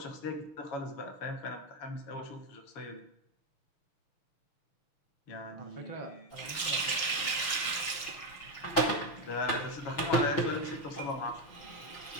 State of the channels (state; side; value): late; right; 6.3 ms